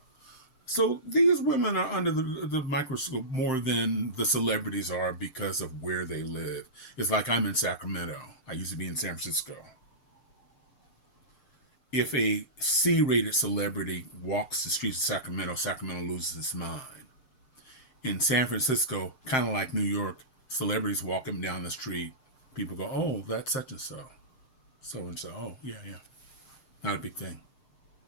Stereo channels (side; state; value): right; late; 6.7 ms